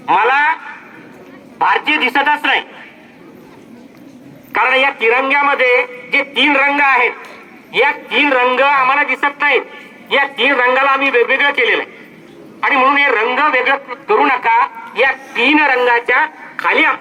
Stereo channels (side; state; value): both; identical; correlation 1.00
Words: मला भारतीय दिसतच नाही, कारण या तिरंग्यामध्ये जे 3 रंग आहेत, या 3 रंग आम्हाला दिसत नाहीत. या 3 रंगाला आम्ही वेगवेगळं केलेलं आहे, आणि म्हणून हे रंग वेगळं करू नका. या 3 रंगाच्या खाली